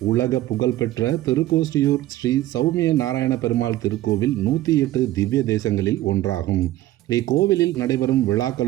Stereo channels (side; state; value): left; quieter; 15.2 dB